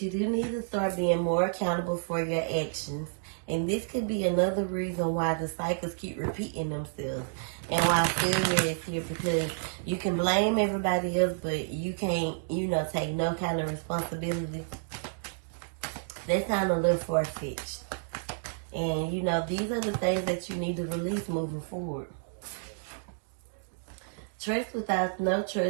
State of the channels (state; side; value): silent; left; digital silence